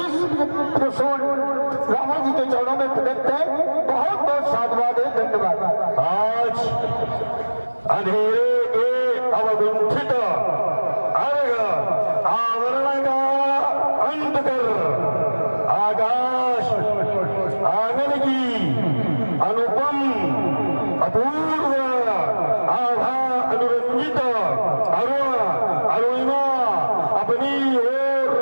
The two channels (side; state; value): both; inverted; correlation -1.00